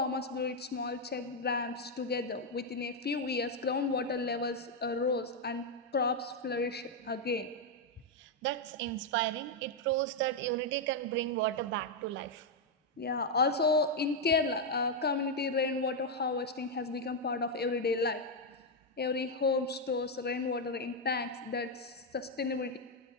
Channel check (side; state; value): both; normal; correlation 0.01